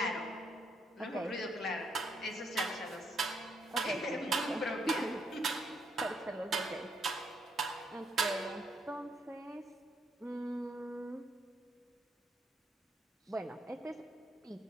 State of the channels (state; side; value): normal; both; correlation 0.73